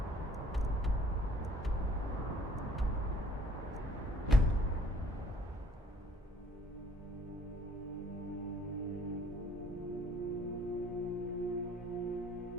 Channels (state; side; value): normal; both; correlation 0.59